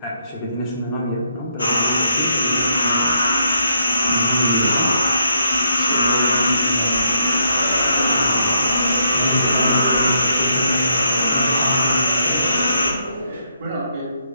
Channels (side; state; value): both; inverted; correlation -0.76